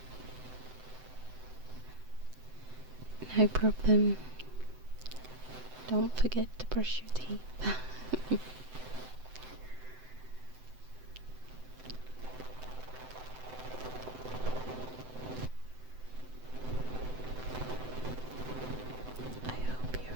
No problem. Don't forget to brush your teeth. I hope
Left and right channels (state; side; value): late; left; 7.8 ms